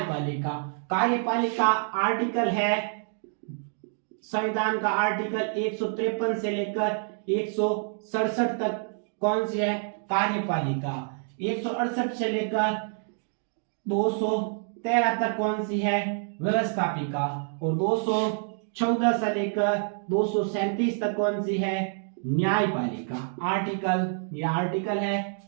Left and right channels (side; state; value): left; silent; 60 dB below the other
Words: कार्यपालिका आर्टिकल है संविधान का आर्टिकल 153 से लेकर 167 तक कौन सी है? कार्यपालिका। 168 से लेकर 213 तक कौन सी है? व्यवस्थापिका। और 214 से लेकर 237 तक कौन सी है? न्यायपालिका। ये आर्टिकल है